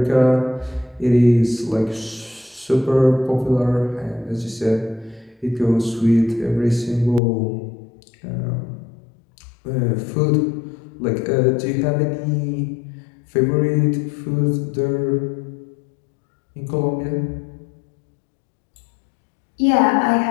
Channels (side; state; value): right; drops out; at 7.2 s